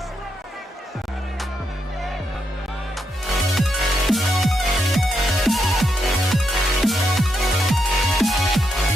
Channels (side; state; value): both; normal; correlation 0.81